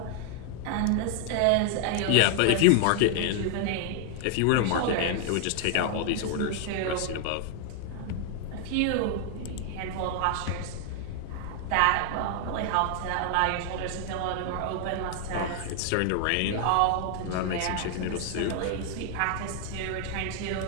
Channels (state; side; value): different; both; correlation 0.00